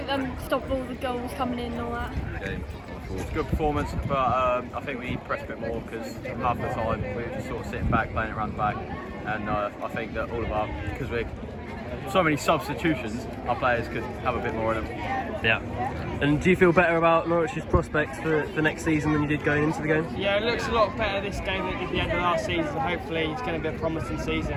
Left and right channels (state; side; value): identical; both; correlation 1.00